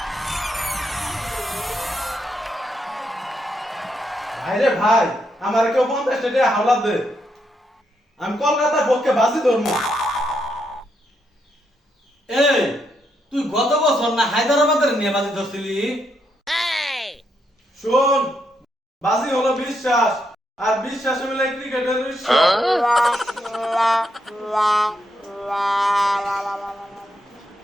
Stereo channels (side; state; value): both; normal; correlation 0.79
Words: ভাইরে ভাই, আমার কেউ 50 টাকা হাওলাত দে। আমি কলকাতার পক্ষে বাজি ধরবো। এই তুই গত বছর না হায়দ্রাবাদের নিয়ে বাজি ধরছিলি? শোন, বাজি হলো বিশ্বাস, আর বিশ্বাস হলো ক্রিকেটের ঈশ্বর।